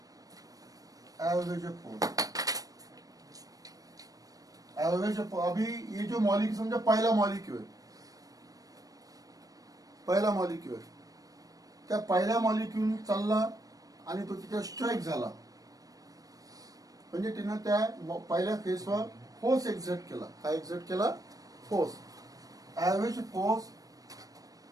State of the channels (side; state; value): left; late; 0.18 ms